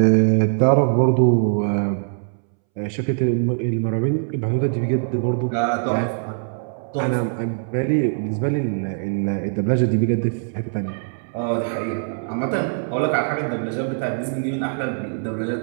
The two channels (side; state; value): left; silent; 64 dB below the other